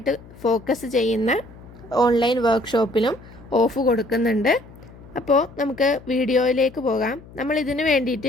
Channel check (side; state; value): left; noise; hum, 20 dB below the sound